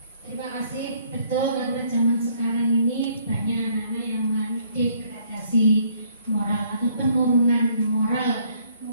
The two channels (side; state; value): both; inverted; correlation -0.65